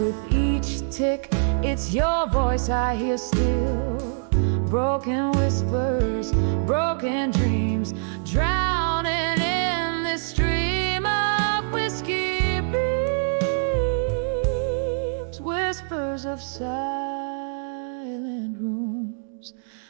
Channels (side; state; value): left; silent; digital silence